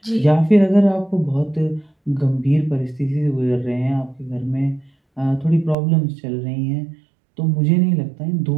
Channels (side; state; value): left; drops out; at 5.8 s